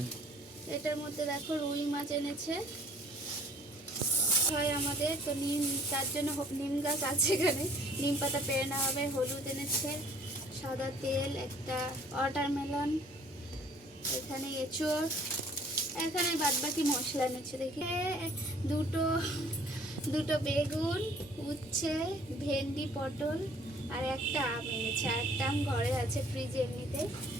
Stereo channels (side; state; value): both; normal; correlation 0.56